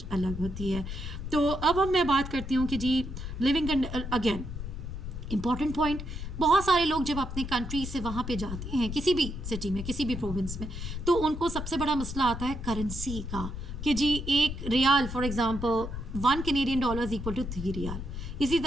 अलग होती है। तो अब मैं बात करती हूँ कि जी लिविंग अगेन इम्पॉर्टेंट पॉइंट, बहुत सारे लोग जब अपने कंट्री से वहाँ पे जाते हैं किसी भी सिटी में किसी भी प्रोविंस में, तो उनको सबसे बड़ा मसला आता है करेंसी का, कि जी एक riyal for example 1 Canadian dollar equal to 3 riyal. इसी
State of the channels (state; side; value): noise; left; rumble, 7 dB below the sound